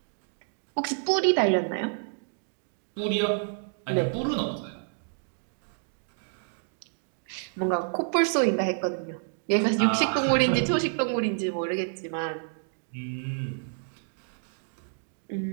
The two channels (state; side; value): silent; left; digital silence